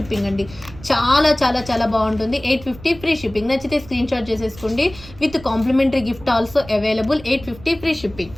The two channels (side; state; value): right; noise; rumble, 18 dB below the sound